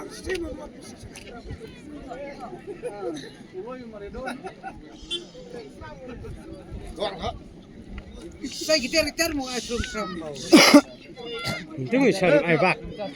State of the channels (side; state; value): both; identical; correlation 1.00